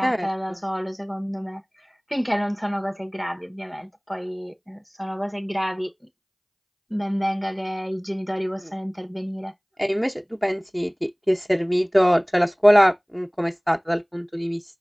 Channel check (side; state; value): both; identical; correlation 1.00